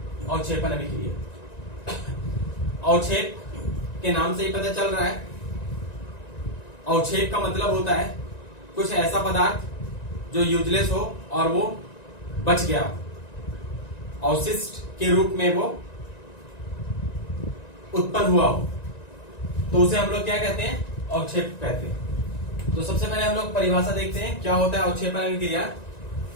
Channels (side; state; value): right; late; 1.9 ms